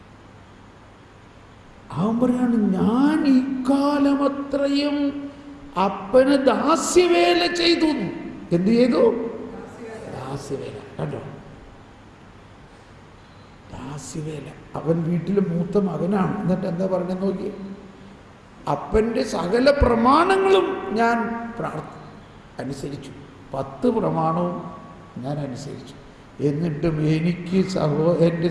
അവൻ പറയാണ്, ഞാൻ ഇക്കാലമത്രയും അപ്പന് ദാസ്യവേല ചെയ്തു. എന്ത് ചെയ്തു? ദാസ്യവേല. കണ്ടോ? ദാസ്യവേല. അവൻ വീട്ടിലെ മൂത്ത മകനാണ്. എന്നിട്ട് എന്താ പറഞ്ഞെന്ന് നോക്കിയേ, അപ്പൻ്റെ സകല പ്രമാണങ്ങളും ഞാൻ അനുസരിച്ചു. 10 പ്രമാണവും ഞാൻ അനുസരിച്ചു. എന്നിട്ടും എനിക്ക് എൻ്റെ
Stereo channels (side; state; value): both; identical; correlation 1.00